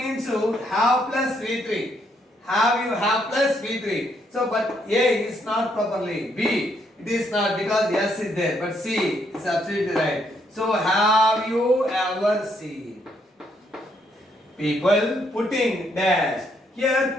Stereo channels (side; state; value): both; normal; correlation 0.73